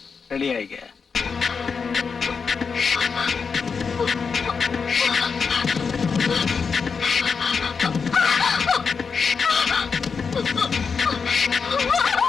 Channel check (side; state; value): right; quieter; 5.5 dB